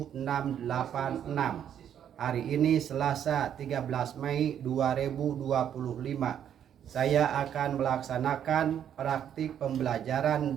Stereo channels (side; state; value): left; quieter; 9.5 dB